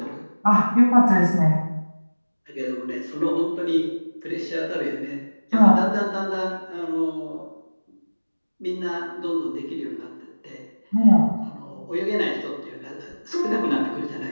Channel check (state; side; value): inverted; both; correlation -1.00